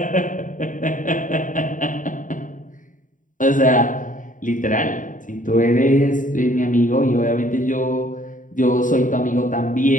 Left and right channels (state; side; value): late; right; 0.38 ms